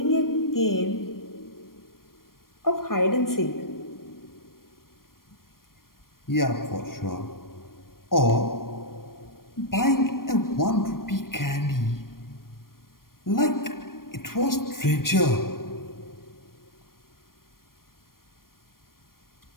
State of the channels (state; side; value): late; right; 0.92 ms